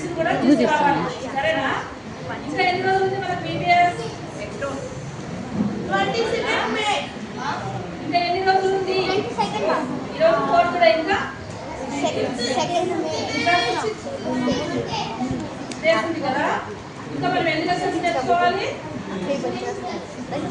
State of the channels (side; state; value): both; identical; correlation 1.00